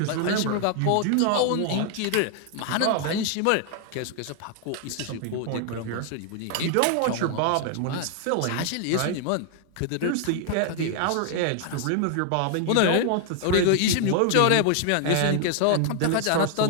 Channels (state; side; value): different; both; correlation 0.00